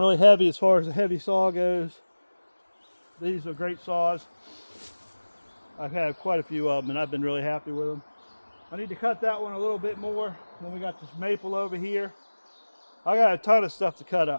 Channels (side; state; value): both; inverted; correlation -1.00